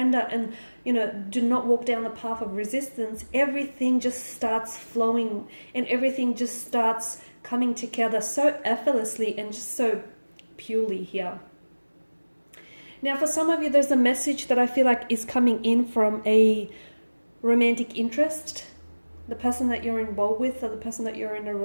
and, do not walk down the path of resistance, everything just starts flowing and everything just starts coming together so effortlessly and just so purely here. Now, for some of you, there's a message that I feel like is coming in from a romantic interest, the person that you're involved with, or the person that you're in a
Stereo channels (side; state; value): both; inverted; correlation -1.00